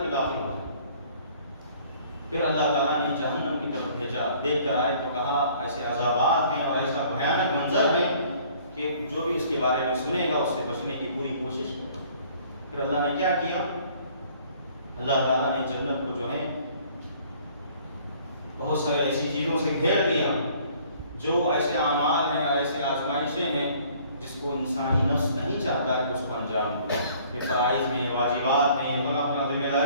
میں داخل ہو جائے۔ پھر اللہ تعالیٰ نے جہنم کی طرف بھیجا، دیکھ کر آئے تو کہا ایسے عذابات ہیں اور ایسا بھیانک منظر ہے کہ جو بھی اس کے بارے میں سنے گا اس سے بچنے کی پوری کوشش کرے۔ پھر اللہ نے کیا کیا؟ اللہ تعالیٰ نے جنت کو جو ہے بہت سارے ایسی چیزوں سے گھیر دیا جو ایسے اعمال ہیں اور ایسے آزمائشیں ہیں جس کو انسانی نفس نہیں چاہتا کہ اس کو انجام دے، یہ فرائض ہیں، یہ واجبات ہیں، یہ فلاں ذمہ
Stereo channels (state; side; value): inverted; both; correlation -0.56